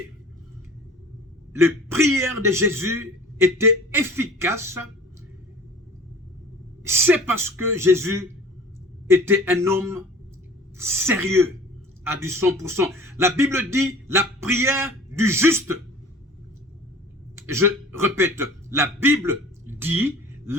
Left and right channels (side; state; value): both; normal; correlation 0.44